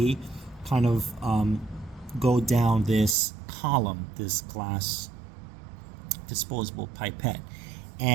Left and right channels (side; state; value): left; drops out; at 3.2 s